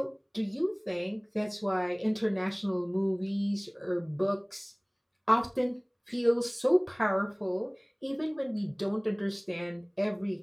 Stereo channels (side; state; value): both; identical; correlation 1.00